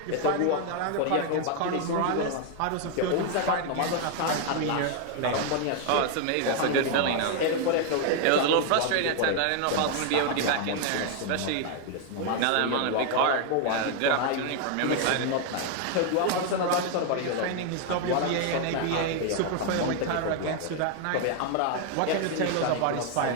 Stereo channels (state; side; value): different; both; correlation 0.00